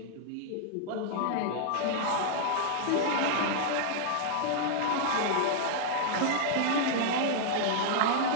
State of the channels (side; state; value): both; different; correlation -0.01